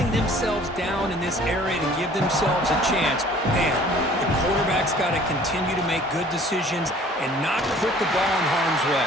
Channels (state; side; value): normal; both; correlation 0.52